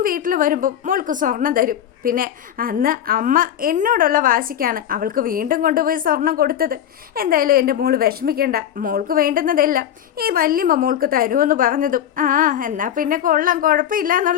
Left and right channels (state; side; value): quieter; right; 10.3 dB